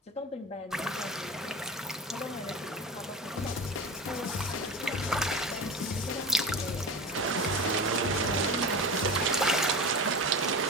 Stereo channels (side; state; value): both; normal; correlation 0.28